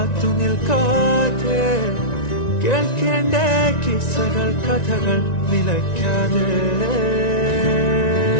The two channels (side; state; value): right; late; 1.9 ms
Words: നിൽക്കാതെ കേൾക്കേണ്ട കിസ്സകൾ കഥകൾ നിലയ്ക്കാതെ